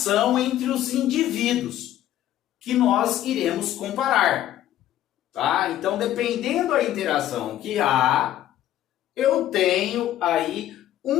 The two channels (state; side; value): quieter; right; 12.7 dB